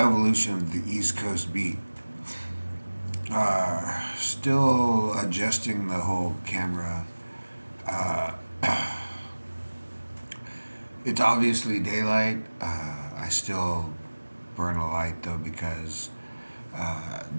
of the East Coast beat. Still adjusting the whole camera. Uh, it's obviously daylight. I still burn a light though because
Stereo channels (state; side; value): inverted; both; correlation -1.00